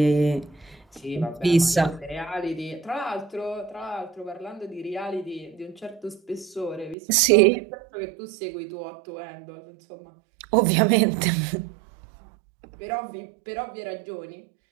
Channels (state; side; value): drops out; left; at 7.0 s